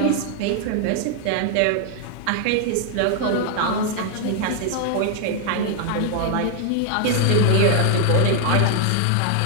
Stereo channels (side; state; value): both; different; correlation 0.00